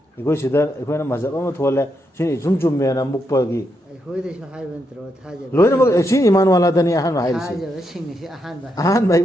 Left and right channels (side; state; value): both; normal; correlation 0.81